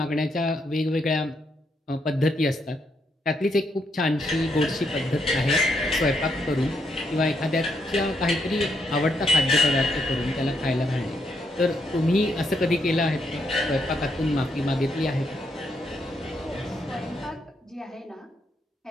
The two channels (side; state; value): both; normal; correlation 0.77